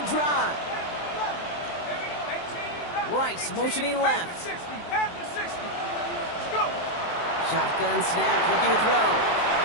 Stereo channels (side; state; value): right; late; 23 ms